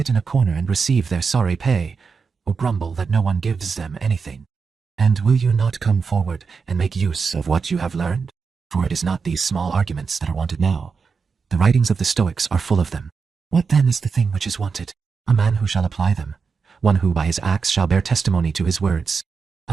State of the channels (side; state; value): left; quieter; 5.3 dB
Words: in a corner and receive their sorry pay, or grumble that no one gives them anything? And will you not come forward and make use of what you have learned? For it is not these small arguments that are wanted now, The writings of the Stoics are full of them. What then is the thing which is wanted? A man who shall apply them, one who by his acts shall bear testimony to his words.